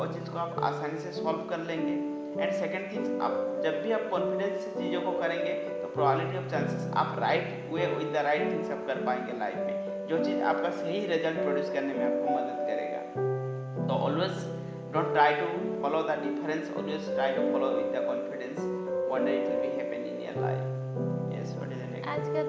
चीज़ को आप आसानी से सॉल्व कर लेंगे। एंड सेकेंड थिंग्स, आप जब भी आप कॉन्फिडेंस से चीज़ों को करेंगे तो प्रोबेबिलिटी ऑफ चांसेस आप right way with the right things आप कर पाएंगे लाइफ में, जो चीज़ आपका सही रिजल्ट प्रोड्यूस करने में आपको मदद करेगा। तो always don't try to follow the difference, always try to follow with the confidence, one day it will be happen in your life. Yes, what is the next? आज का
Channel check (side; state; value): both; identical; correlation 1.00